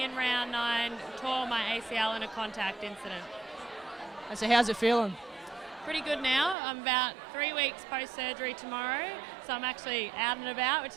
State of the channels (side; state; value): left; drops out; at 6.6 s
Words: in round 9, tore my ACL in a contact incident. And so how's it feeling? Pretty good now. I'm about 3 weeks post-surgery tomorrow, so I'm actually out and about,